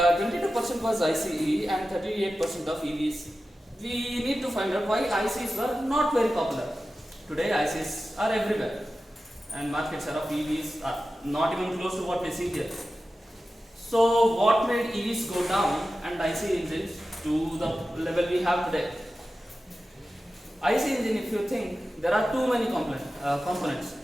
22% was ICE and 38% of EVs. We need to find out why ICs were not very popular. Today ICs are everywhere, and market share of EVs are not even close to what we see here. So what made EVs go down and IC engines to the level we have today? IC engine, if you think, there are too many components.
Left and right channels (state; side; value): normal; both; correlation 0.94